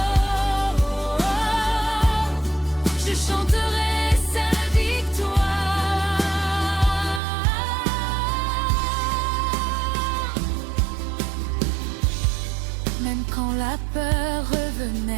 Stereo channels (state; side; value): drops out; left; at 7.2 s